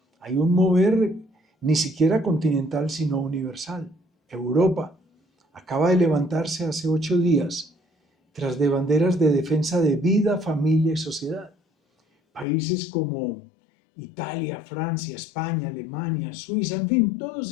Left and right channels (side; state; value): right; drops out; at 12.5 s